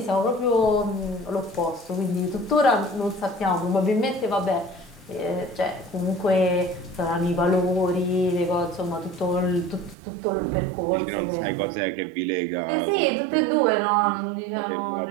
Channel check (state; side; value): drops out; left; at 10.0 s